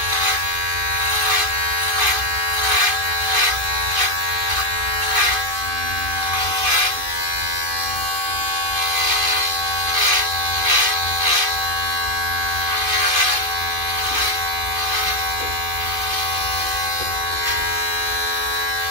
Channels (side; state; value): left; late; 2.5 ms